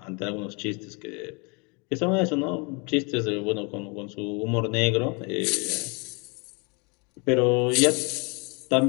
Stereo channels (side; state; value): right; quieter; 32.2 dB